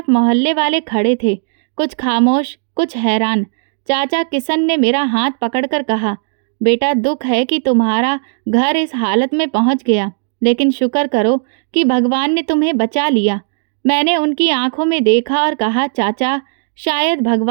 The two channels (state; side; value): silent; left; digital silence